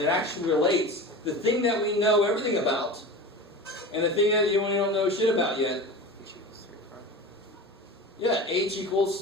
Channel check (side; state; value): both; normal; correlation 0.32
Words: actually relates the thing that we know everything about and the thing that we don't know shit about yet? Yeah, H